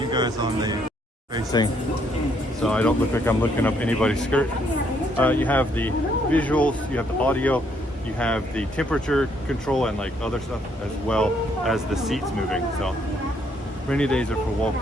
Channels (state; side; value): normal; both; correlation 0.70